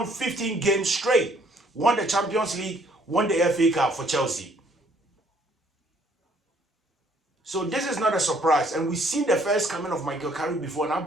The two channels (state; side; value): normal; both; correlation 0.63